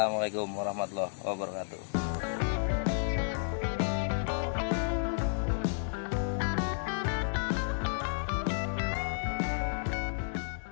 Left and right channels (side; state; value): right; silent; digital silence